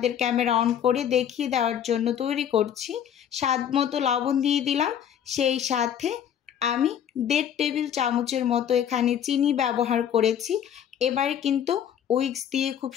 ক্যামেরা অন করে দেখিয়ে দেওয়ার জন্য তৈরি করছি। স্বাদ মতো লবণ দিয়ে দিলাম, সেই সাথে আমি 1.5 টেবিল চামচের মতো এখানে চিনি ব্যবহার করেছি। এবারে কিন্তু উইক্স দিয়ে খুব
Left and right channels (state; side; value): quieter; right; 9.3 dB